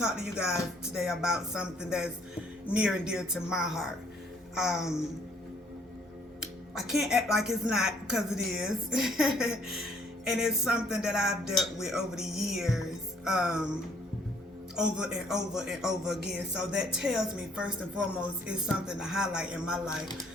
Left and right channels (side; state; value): both; normal; correlation 0.63